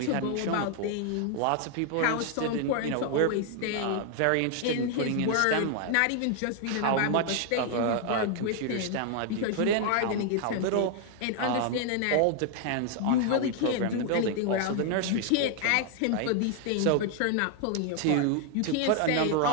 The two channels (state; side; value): different; both; correlation 0.00